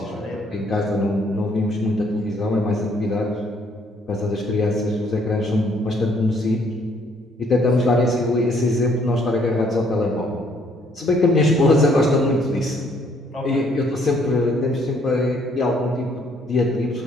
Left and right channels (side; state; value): both; normal; correlation 0.66